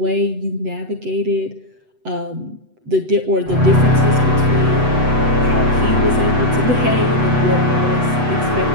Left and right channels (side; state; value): left; late; 8.0 ms